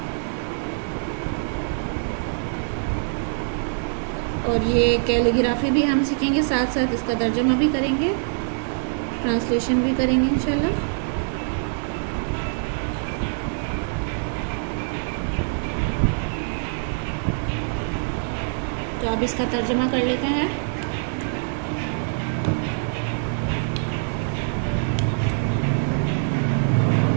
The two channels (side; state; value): left; silent; 62 dB below the other